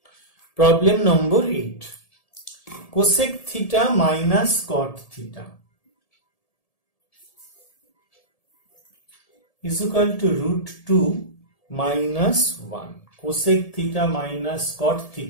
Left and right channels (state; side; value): late; right; 1.7 ms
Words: Problem number 8, cosec theta minus cot theta is equal to √2 minus 1। cosec theta minus cot